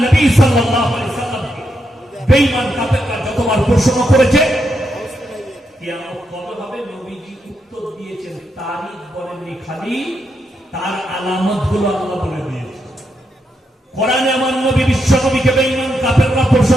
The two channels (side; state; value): both; normal; correlation 0.82